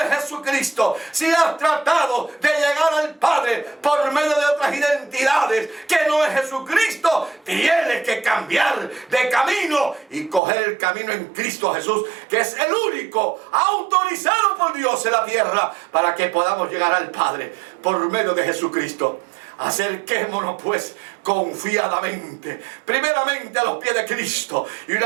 Jesucristo, si has tratado de llegar al Padre por medio de otras identidades que no es Jesucristo, tienes que cambiar de camino y coger el camino en Cristo Jesús, que es el único autorizado por Dios en la tierra para que podamos llegar al Padre por medio de Jesucristo. Acerquémonos pues confiadamente, primeramente a los pies de Cristo, y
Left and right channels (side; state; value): left; drops out; at 10.4 s